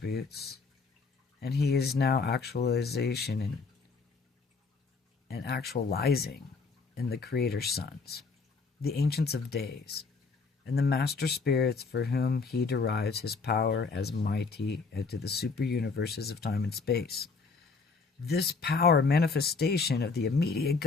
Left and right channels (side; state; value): right; quieter; 4.5 dB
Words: and he is now actualization and actualizing in the Creator's sons, the ancients of days, and the master spirits for whom he derives his power as mighty into the super universes of time and space. This power manifestation of the immediate